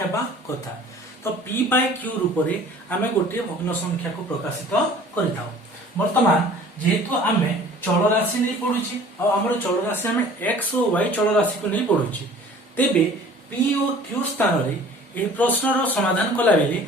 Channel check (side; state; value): both; normal; correlation 0.48